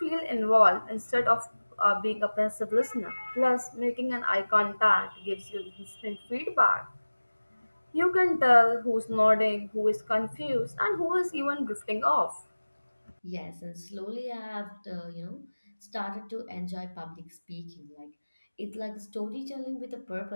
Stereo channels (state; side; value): inverted; both; correlation -1.00